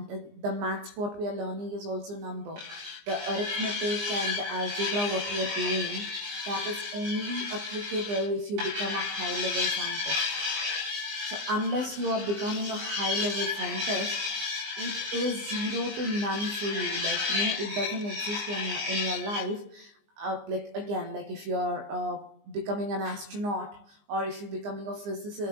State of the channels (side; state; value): left; late; 20 ms